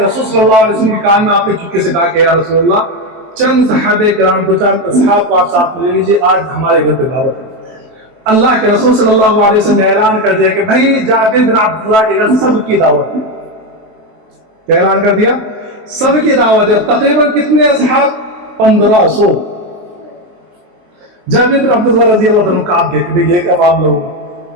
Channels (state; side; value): late; left; 23 ms